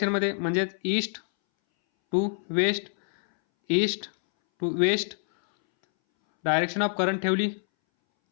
म्हणजे east to west, direction of current ठेवली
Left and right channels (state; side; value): silent; right; 61 dB below the other